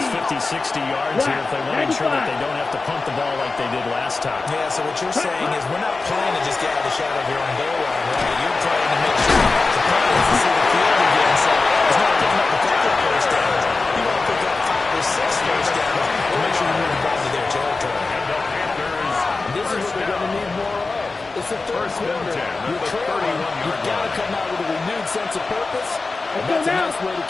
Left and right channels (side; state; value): right; quieter; 3.8 dB